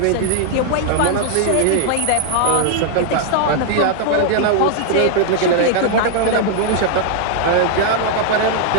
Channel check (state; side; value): different; both; correlation 0.00